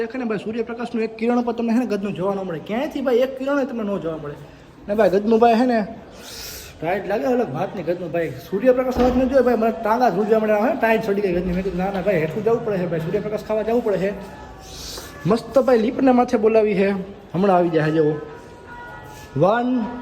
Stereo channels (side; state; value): both; identical; correlation 1.00